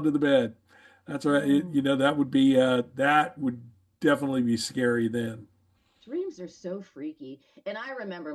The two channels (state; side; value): identical; both; correlation 1.00